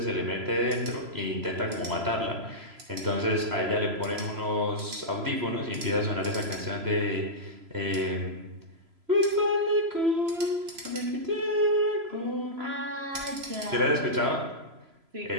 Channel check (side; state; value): left; late; 3.0 ms